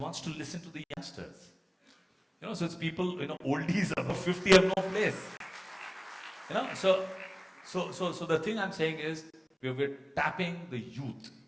wants to listen to the youngsters. You know, so it's people, you know, oldies above 50 have no place. You know, so the thing I'm saying is, we're tapping the youth,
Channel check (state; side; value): identical; both; correlation 1.00